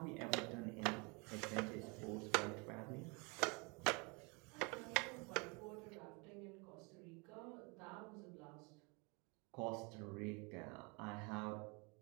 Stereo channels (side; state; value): left; quieter; 30.3 dB